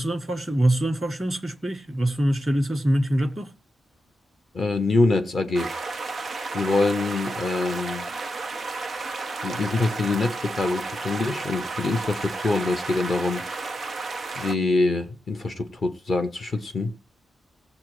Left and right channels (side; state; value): both; normal; correlation 0.88